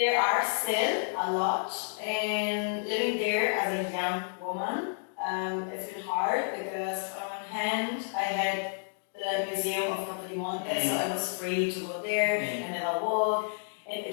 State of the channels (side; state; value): right; silent; digital silence